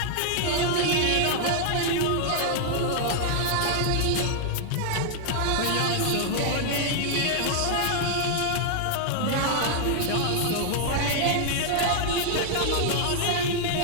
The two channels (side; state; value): both; different; correlation 0.00